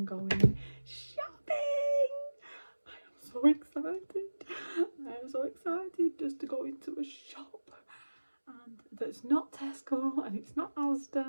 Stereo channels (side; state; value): both; inverted; correlation -1.00